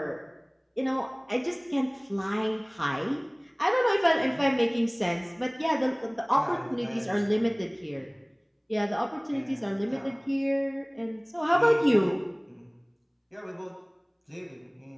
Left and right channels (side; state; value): both; identical; correlation 1.00